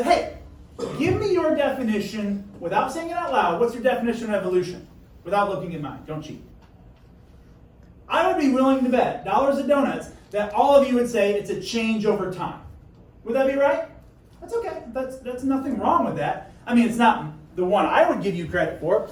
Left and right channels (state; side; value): identical; both; correlation 1.00